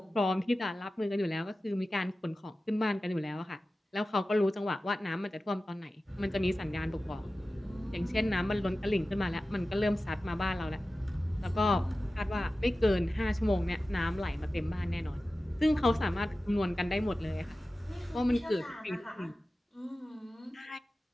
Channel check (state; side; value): normal; both; correlation 0.95